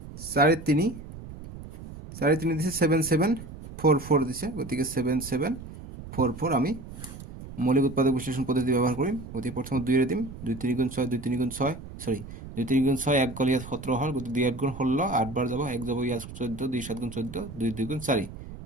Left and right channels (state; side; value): noise; right; rumble, 13 dB below the sound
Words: 4 3 4 3 দিছে 7 7 4 4 দিছে গতিকে 7 7 4 4 আমি মৌলিক উৎপাদক বিশ্লেষণ পদ্ধতি ব্যবহার কৰিম গতিকে প্ৰথমে 2 এর দিম 2 3 গুণ 6 2 3 গুণ 6 সরি 2 3 গুণ 6 1 গল ইয়াত 17 হল গতিকে 2 8 গুণ 16 8 বার যাব 1 যাব ইয়াত 14 2 7 গুণ 14 2 2 গুণ 4